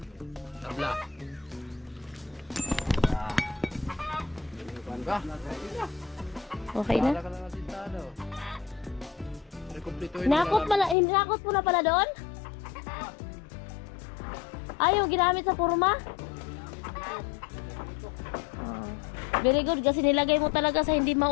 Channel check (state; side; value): drops out; right; at 11.0 s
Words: Tabla. Ba? Okay na? Wala ka na nasintado. Rekomplituhin Hinakot mo na pala doon? Ay, yung ginamit sa purma? Oh. Very good kasi nilagay mo talaga sa hindi